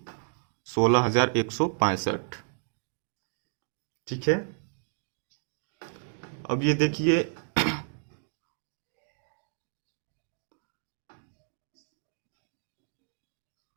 16,165। ठीक है। अब ये देखिए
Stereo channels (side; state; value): left; silent; digital silence